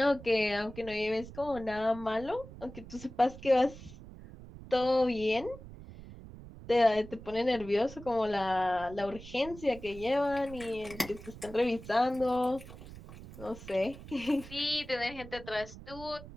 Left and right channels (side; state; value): right; noise; rumble, 15 dB below the sound